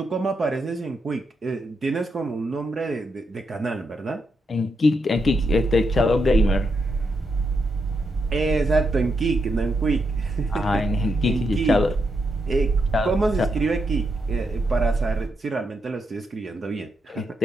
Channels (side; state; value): both; normal; correlation 0.82